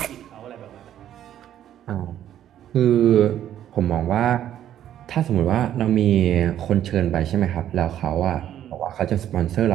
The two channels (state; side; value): quieter; left; 11.1 dB